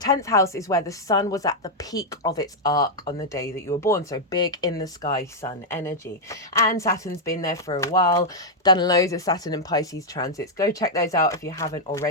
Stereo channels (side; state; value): both; normal; correlation -0.03